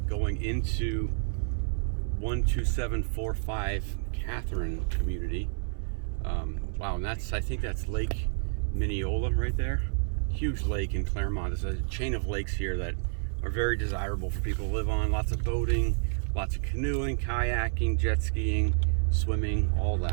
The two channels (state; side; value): silent; left; 58 dB below the other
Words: into 12745 Catherine community. Wow, and I think that's Lake Mineola right there. Huge lake in Clermont. There's a chain of lakes here that are very desirable for people to live on. Lots of boating, lots of canoeing, kayaking, jet skiing, swimming, all